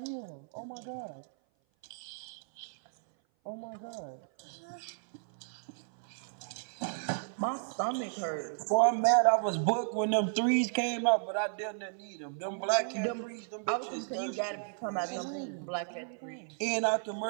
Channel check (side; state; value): left; silent; 55 dB below the other